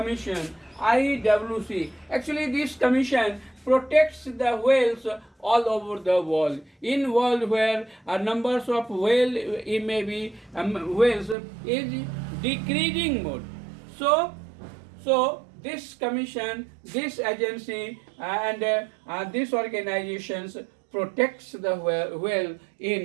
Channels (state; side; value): drops out; left; at 11.4 s